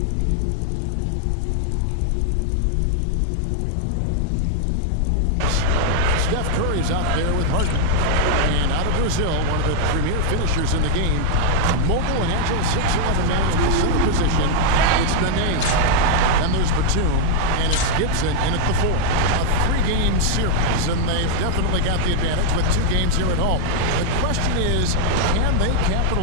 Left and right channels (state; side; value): different; both; correlation 0.00